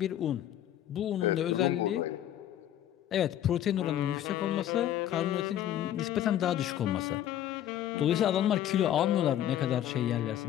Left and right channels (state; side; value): quieter; right; 11.5 dB